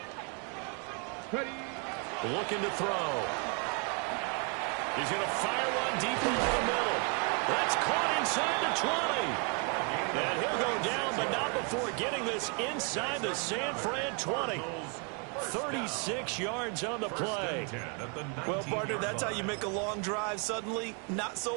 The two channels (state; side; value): quieter; left; 37.0 dB